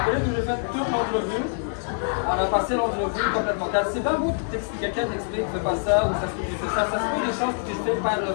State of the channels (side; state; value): right; silent; 60 dB below the other